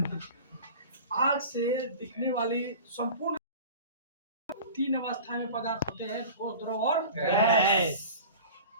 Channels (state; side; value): inverted; both; correlation -0.38